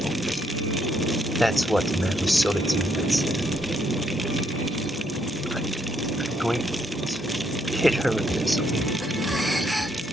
That's what the man who sold it to me had said. I'm going to hit her with this, okay?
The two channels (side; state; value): both; normal; correlation 0.73